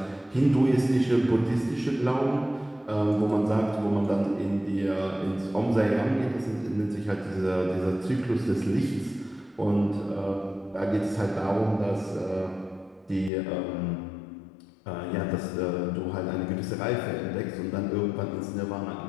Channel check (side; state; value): right; drops out; at 13.3 s